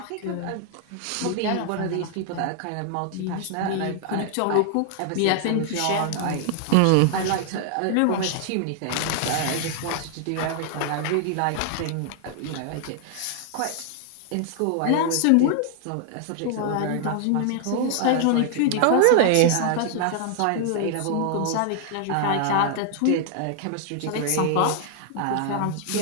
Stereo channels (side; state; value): both; different; correlation 0.00